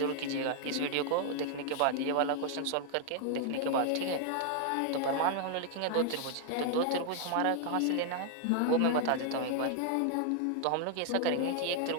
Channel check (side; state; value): both; different; correlation 0.00